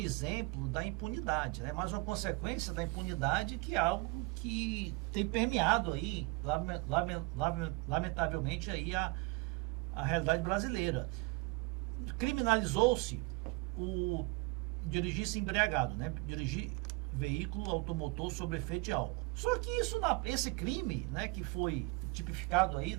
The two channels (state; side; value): quieter; left; 25.0 dB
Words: da impunidade, né? Mais uma consequência da impunidade, que é algo que tem permeado aí, lamentavelmente, aí a realidade brasileira. Criminalizou-se o dirigir-se embriagado, né? Dirigir veículo automotor sob efeito de álcool. Só que esse crime, né, que foi tipificado aí